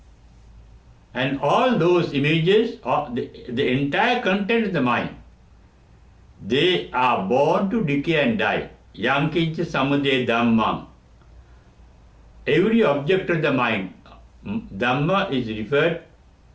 And all those images, the entire content of the mind, they are born to decay and die. Yankincha samudaya dhammam. Every object of the mind, Dhamma is referred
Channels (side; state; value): both; identical; correlation 1.00